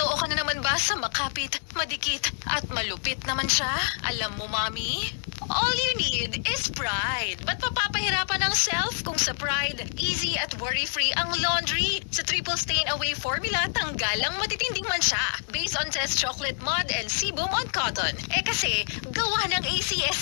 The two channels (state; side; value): silent; right; digital silence